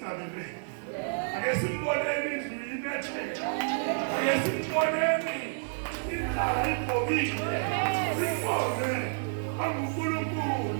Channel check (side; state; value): left; silent; 58 dB below the other